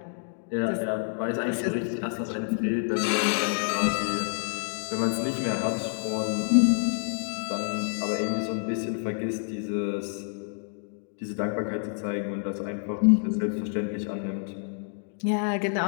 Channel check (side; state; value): right; silent; 55 dB below the other